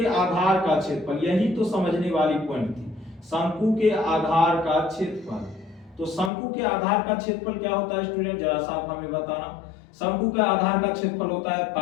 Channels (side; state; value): right; drops out; at 6.3 s